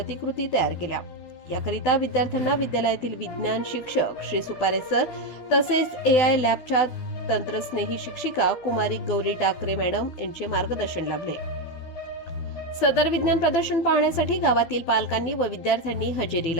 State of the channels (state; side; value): late; right; 12 ms